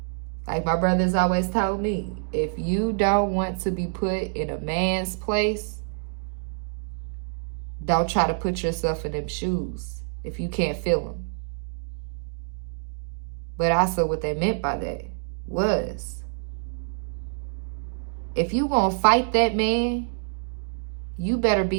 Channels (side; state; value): left; silent; digital silence